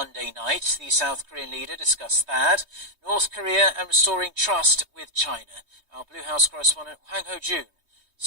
night. The South Korean leader discussed THAAD, North Korea and restoring trust with China. Our Blue House correspondent Hwang Ho-jun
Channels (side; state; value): left; late; 3.2 ms